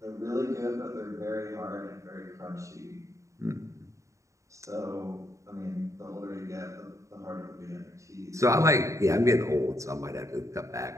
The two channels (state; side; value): late; left; 0.15 ms